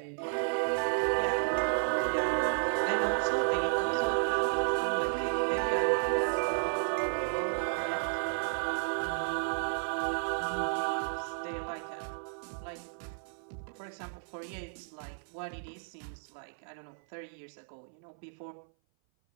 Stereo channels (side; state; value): left; silent; 56 dB below the other